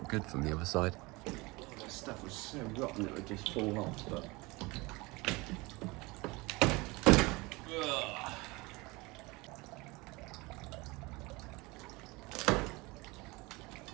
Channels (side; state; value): left; quieter; 24.0 dB